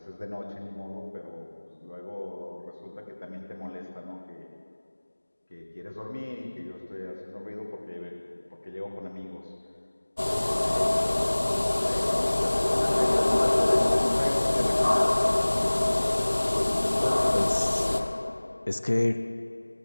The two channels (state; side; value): inverted; both; correlation -1.00